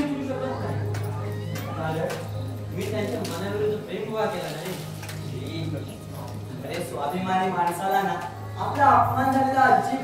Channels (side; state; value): both; identical; correlation 1.00